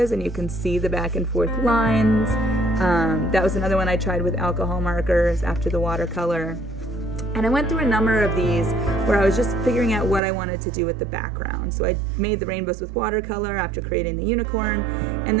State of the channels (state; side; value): drops out; left; at 10.2 s